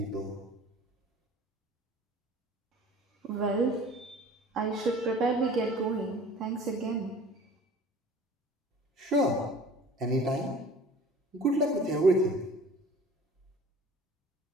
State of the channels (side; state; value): both; normal; correlation 0.45